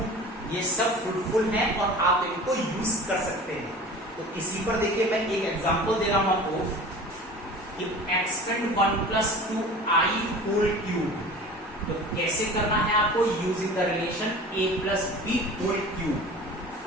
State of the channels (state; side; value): normal; both; correlation 0.39